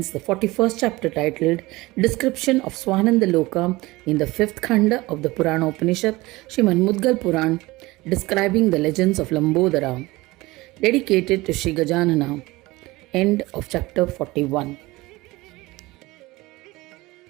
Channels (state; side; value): quieter; left; 20.7 dB